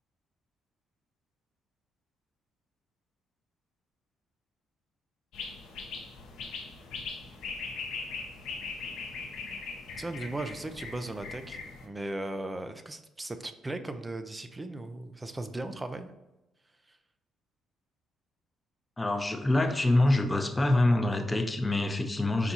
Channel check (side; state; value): both; normal; correlation 0.92